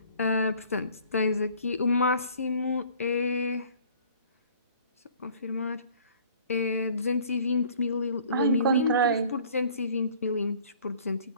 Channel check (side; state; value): both; inverted; correlation -0.53